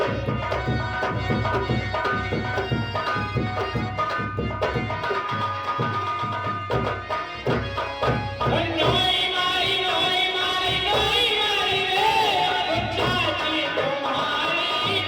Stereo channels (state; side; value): identical; both; correlation 1.00